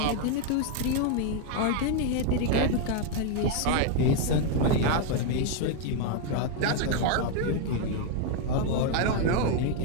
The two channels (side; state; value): both; different; correlation 0.01